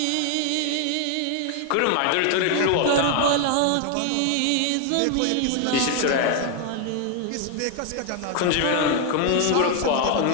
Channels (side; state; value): both; different; correlation 0.01